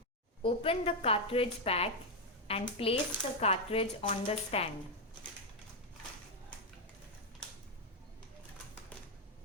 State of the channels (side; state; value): both; normal; correlation 0.03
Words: Open the cartridge pack and place the cartridge on the stand.